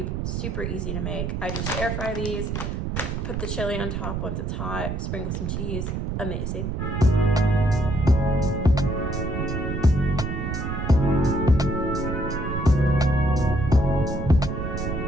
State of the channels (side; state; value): right; noise; rumble, 3 dB below the sound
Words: super easy to make. I just air fry these, put the chili on top once it's hot, sprinkle some cheese. Amazing.